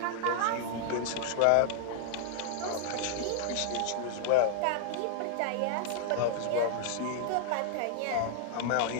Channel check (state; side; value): different; both; correlation -0.01